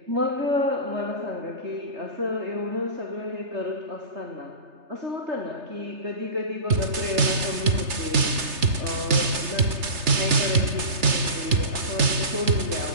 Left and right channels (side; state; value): left; late; 3.3 ms